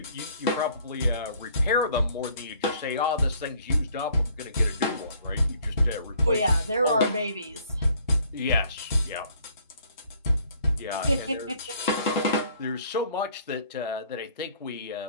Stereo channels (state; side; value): inverted; both; correlation -0.61